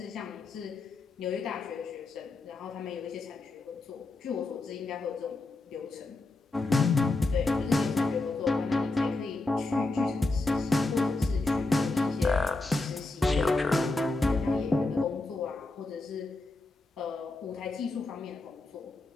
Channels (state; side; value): quieter; right; 3.2 dB